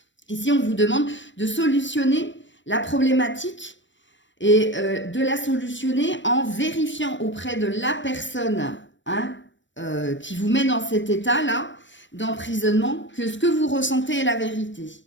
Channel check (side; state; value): right; late; 0.54 ms